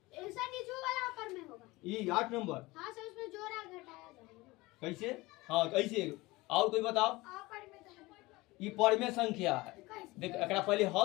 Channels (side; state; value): right; quieter; 21.3 dB